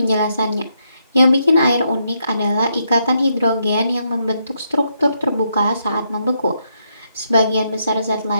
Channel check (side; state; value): both; inverted; correlation -0.78